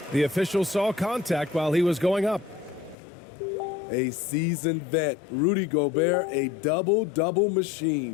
The official saw contact while he was going up. A seasoned vet, Rudy Gobert, a double-double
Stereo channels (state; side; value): drops out; right; at 3.0 s